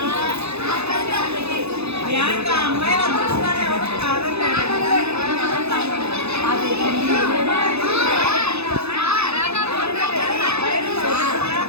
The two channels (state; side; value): late; left; 0.79 ms